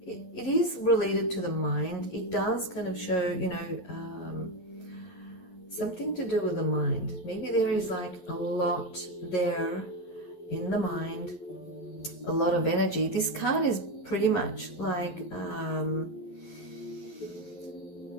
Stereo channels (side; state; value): right; late; 11 ms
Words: it is related to the mind. It does kind of show, you know, something to do with the mind. Maybe there is like a lot there in the mind, a lot of energy. This card is pretty much like